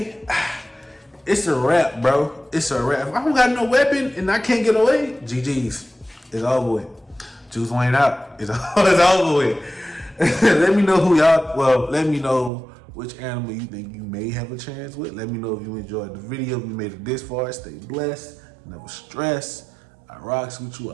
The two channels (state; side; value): drops out; left; at 12.5 s